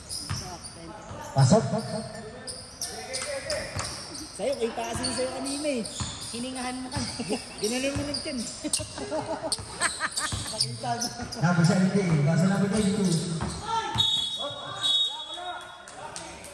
Pasok. Sa'yo, kay passing sa'yo kanina eh. Hiningahan mo kami. Ginanon mo lang dyan. Number 17. Pass to number 22.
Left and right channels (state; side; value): identical; both; correlation 1.00